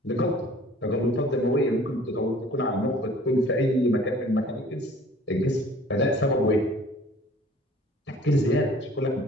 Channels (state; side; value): normal; both; correlation 0.50